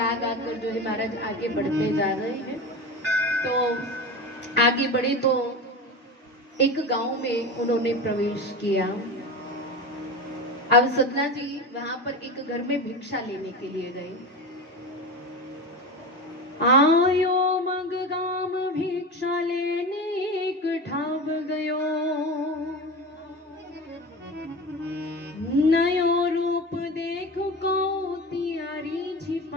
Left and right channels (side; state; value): both; normal; correlation 0.26